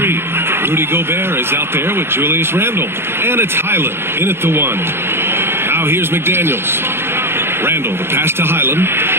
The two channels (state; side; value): late; left; 0.11 ms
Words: Rudy Gobert is out there with Julius Randle. And it's Highland in at the 1. Now here's McDaniels. Randle, the pass to Highland.